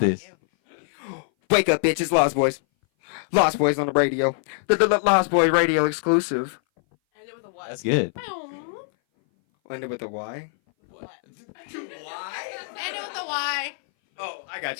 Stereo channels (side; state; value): right; silent; 59 dB below the other